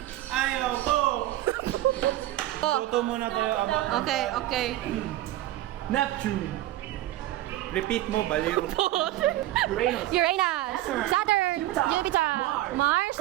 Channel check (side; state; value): left; quieter; 15.0 dB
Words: Ayaw ko! Oh, Toto muna tayo about okay, okay. Neptune. Repeat mo, baliw. Uranus, Saturn, Jupiter, Mars,